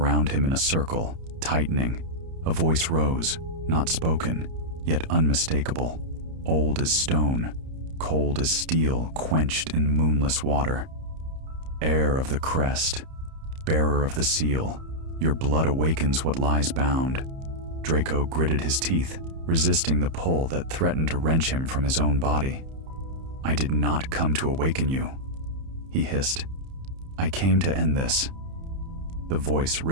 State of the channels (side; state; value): left; late; 30 ms